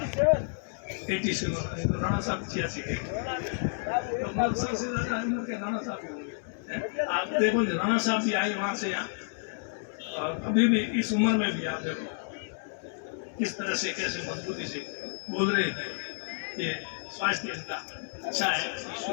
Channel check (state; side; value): silent; right; digital silence